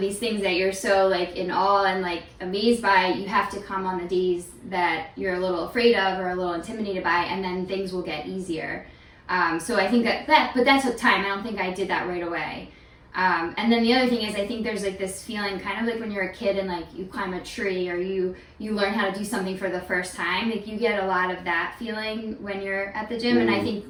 things that you're so like in awe and like amazed by, you have to come on the days that you're a little afraid of or a little intimidated by, and then things will get easier. So I think but that took time. I don't think I did that right away. And then the other thing is, I think there's like this feeling kind of like when you're a kid and like you climb a tree or you learn how to do something for the first time, like you get a lot of that feeling when you're at the gym. And I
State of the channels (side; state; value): both; identical; correlation 1.00